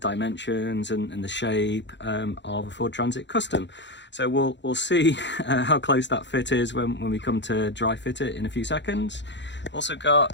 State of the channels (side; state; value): right; late; 0.52 ms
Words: and the shape of a Ford Transit Custom. So we'll see how close that fit is when we come to dry fit it in a few seconds. Also